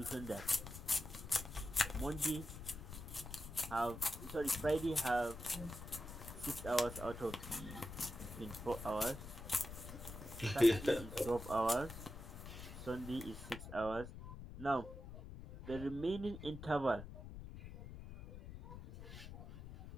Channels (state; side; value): noise; left; rumble, 11 dB below the sound